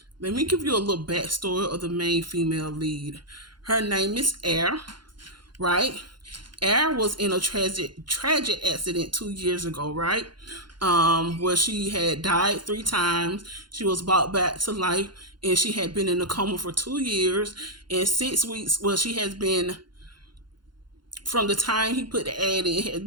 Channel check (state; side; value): late; left; 0.72 ms